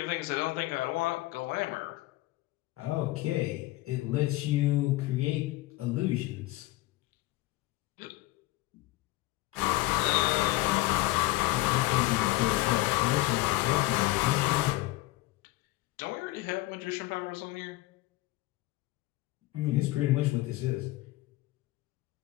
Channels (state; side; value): quieter; right; 18.7 dB